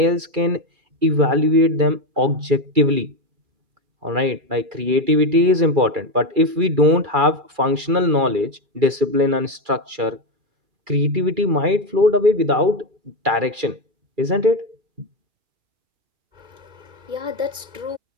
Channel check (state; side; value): late; left; 2.4 ms